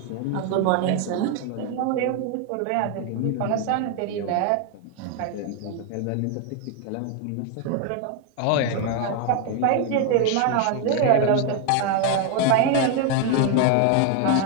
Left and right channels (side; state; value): both; different; correlation 0.01